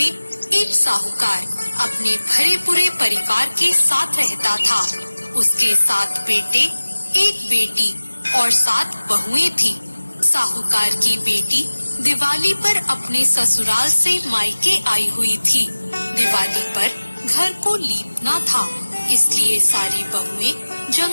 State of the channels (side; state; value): both; inverted; correlation -1.00